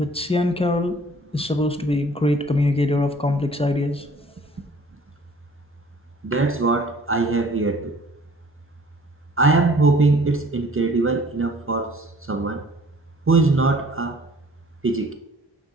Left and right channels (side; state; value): both; normal; correlation 0.53